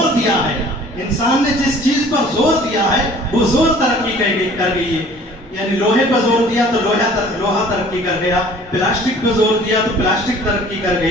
دیا ہے، انسان نے جس چیز پر زور دیا ہے وہ زور ترقی کر گئی ہے۔ یعنی لوہے پر زور دیا تو لوہا ترقی کر گیا، پلاسٹک پر زور دیا تو پلاسٹک ترقی کر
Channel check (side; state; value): both; normal; correlation 0.51